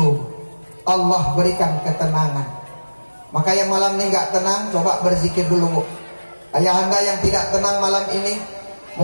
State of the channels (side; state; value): both; inverted; correlation -1.00